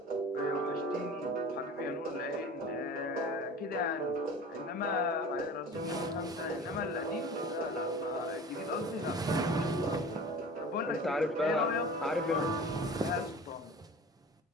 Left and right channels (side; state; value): both; normal; correlation 0.39